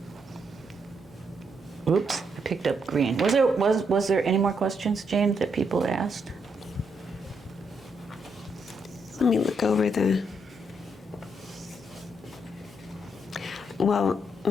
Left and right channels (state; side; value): normal; both; correlation 0.77